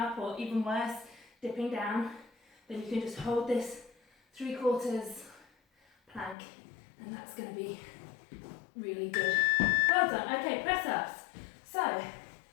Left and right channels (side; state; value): right; drops out; at 6.4 s